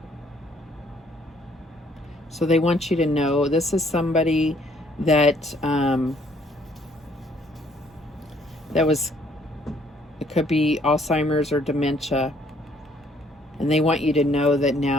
So they want you to know this is somebody that that was, it could be Alzheimer's or dementia, and they want you to know that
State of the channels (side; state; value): both; normal; correlation 0.64